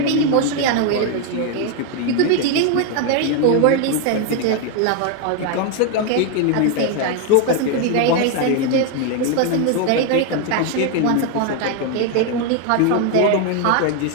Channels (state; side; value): different; both; correlation 0.01